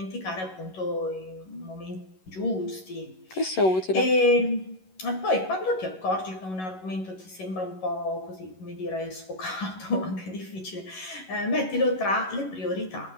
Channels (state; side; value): late; right; 11 ms